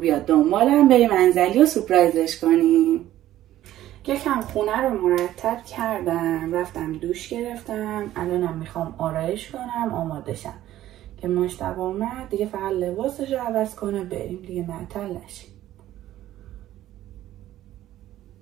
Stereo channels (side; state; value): left; quieter; 13.6 dB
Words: بیاد دنبالم، بریم انزلی و سورپرایزش کنیم. یکم خونه رو مرتب کردم، رفتم دوش گرفتم، الانم میخوام آرایش کنم آماده شم که مجتبی اومد دیگه فقط لباسش رو عوض کنه بریم دیگه معطل نشیم.